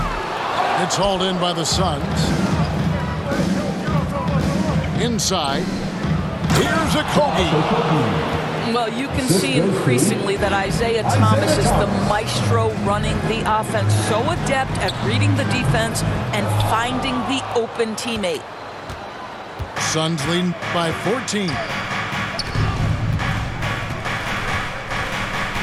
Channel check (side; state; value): both; identical; correlation 1.00